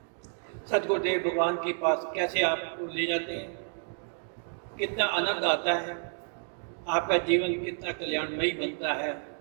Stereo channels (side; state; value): left; silent; 58 dB below the other